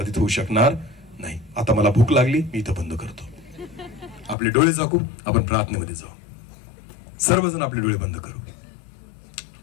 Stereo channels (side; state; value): right; drops out; at 4.4 s